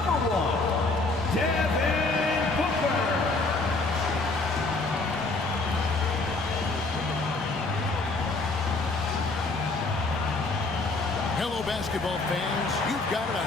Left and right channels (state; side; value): quieter; right; 3.4 dB